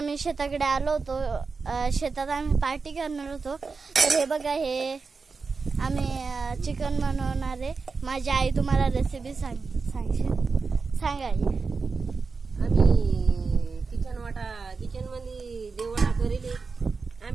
शेताकडे आलो होतो. शेतात आम्ही पार्टी करणार होतो. तर हे बघा, हे आम्ही चिकन बनवणार आहे. माझी आई तुम्हाला रेसिपी सांगा. आम्ही किचन मध्ये देवडा करेल.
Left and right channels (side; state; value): left; quieter; 4.6 dB